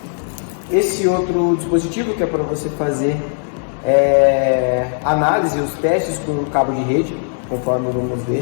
Esse outro dispositivo que é para você fazer análise e os testes com o cabo de rede, conforme vamos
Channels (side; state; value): right; silent; digital silence